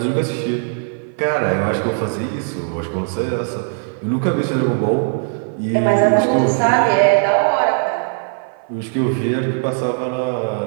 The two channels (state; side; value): silent; left; 57 dB below the other